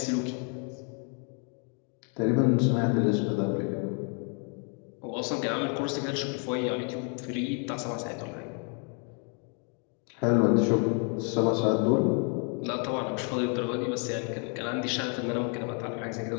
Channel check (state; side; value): quieter; right; 39.2 dB